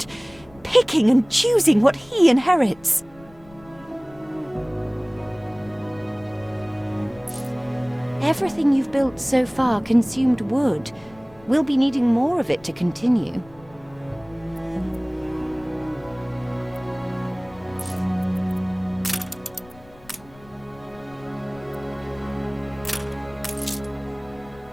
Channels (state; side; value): noise; left; rumble, 24 dB below the sound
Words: Picking and choosing what he inherits. Everything you've built so far consumed wood. We'll be needing more of it to continue.